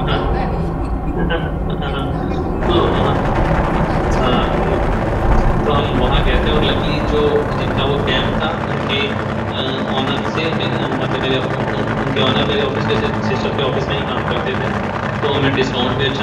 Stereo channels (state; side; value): identical; both; correlation 1.00